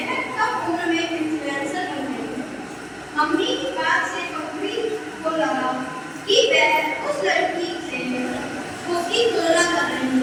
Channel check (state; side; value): identical; both; correlation 1.00